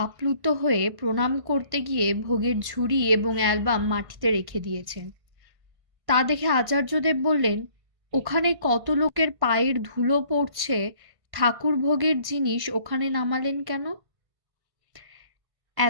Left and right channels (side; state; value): left; late; 1.5 ms